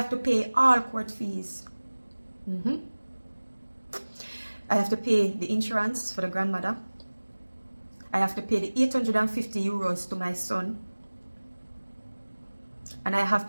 to pay all court fees. I have to pay the insurance for the grandmother. I have to pay the €850 to my son. And I have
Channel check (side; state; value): both; inverted; correlation -1.00